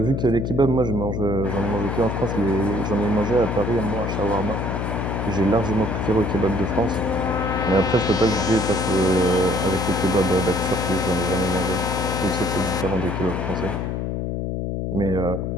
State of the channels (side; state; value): left; noise; hum, 2 dB below the sound